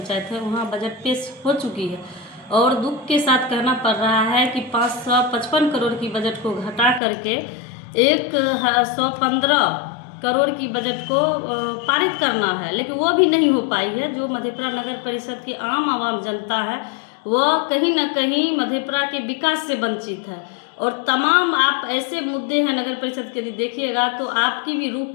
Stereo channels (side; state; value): right; drops out; at 7.0 s